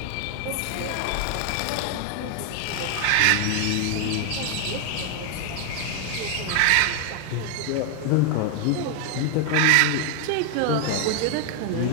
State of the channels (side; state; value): both; different; correlation 0.01